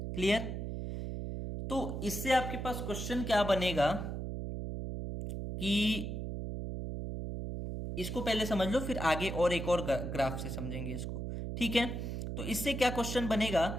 क्लियर? तो इससे आपके पास क्वेश्चन क्या बनेगा कि इसको पहले समझ लो, फिर आगे और एक और ग्राफ से समझेंगे इसको। ठीक है, तो इससे क्या क्वेश्चन बनेगा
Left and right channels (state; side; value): noise; right; hum, 4 dB below the sound